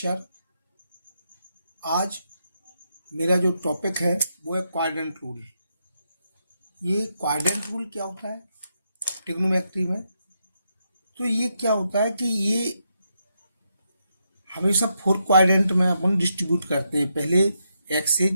आज मेरा जो टॉपिक है वो है क्वाड्रेंट रूल। ये क्वाड्रेंट रूल क्या होता है ट्रिग्नोमेट्री में? तो ये क्या होता है कि ये हमेशा 4 क्वाड्रेंट में अपन डिस्ट्रीब्यूट करते हैं। पहले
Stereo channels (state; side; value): inverted; both; correlation -0.81